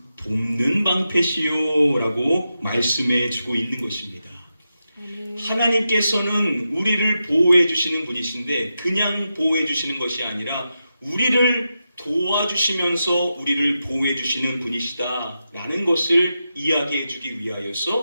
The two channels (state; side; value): inverted; both; correlation -0.88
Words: 돕는 방패시요라고 말씀해 주고 있는 것입니다. 하나님께서는 우리를 보호해 주시는 분이신데 그냥 보호해 주시는 것이 아니라 우리를 도와주시면서 우리를 보호해 주시는 분이시다라는 것을 이야기해 주기